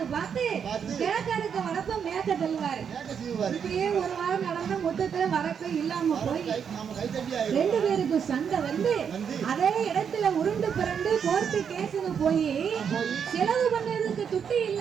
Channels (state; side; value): quieter; left; 7.3 dB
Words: பார்த்து கிழக்க இருக்க வரப்ப மேற்க தள்ளுவாரு. இப்படியே ஒரு வாரம் நடந்த மொத்தத்துல வரப்ப இல்லாம போய் 2 பேருக்கும் சண்டை வந்து அதே இடத்துல உருண்டு பிறண்டு கோர்ட்டு கேஸுக்கு போய் செலவு பண்ணதுக்கு துட்டு